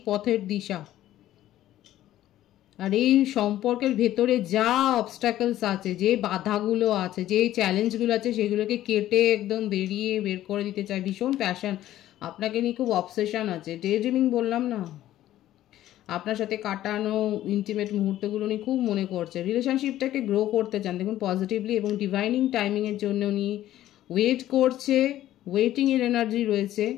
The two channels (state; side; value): quieter; right; 13.5 dB